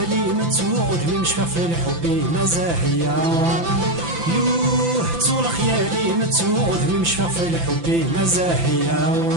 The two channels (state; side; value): late; left; 5.9 ms